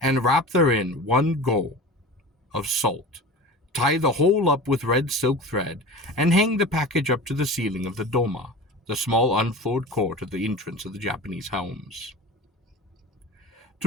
wrap therein 1 go of salt. Tie the whole up with red silk thread, and hang the package up to the ceiling of the doma, the small unfloored court at the entrance of the Japanese homes.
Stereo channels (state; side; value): normal; both; correlation 0.33